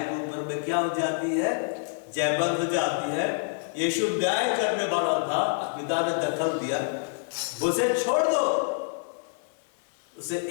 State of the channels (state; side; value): silent; right; digital silence